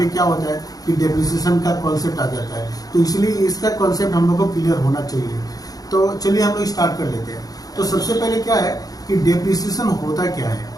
क्या होता है कि डेप्रिसिएशन का कॉन्सेप्ट आ जाता है। तो इसलिए इसका कॉन्सेप्ट हम लोग को क्लियर होना चाहिए। तो चलिए हम लोग स्टार्ट कर लेते हैं। तो सबसे पहले क्या है कि डेप्रिसिएशन होता क्या है।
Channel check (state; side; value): late; right; 0.18 ms